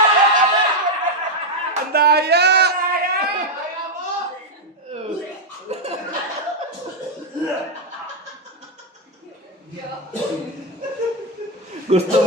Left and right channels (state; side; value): normal; both; correlation 0.01